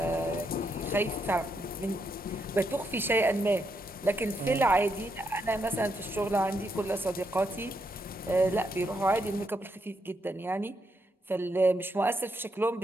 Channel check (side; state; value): both; normal; correlation 0.79